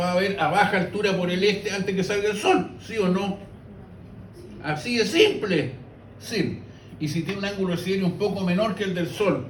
a ver a baja altura por el este antes que salga el Sol, ¿sí o no? Así de simple, sí. Y si tiene un ángulo de siderio un poco menor que el del Sol,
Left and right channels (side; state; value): both; identical; correlation 1.00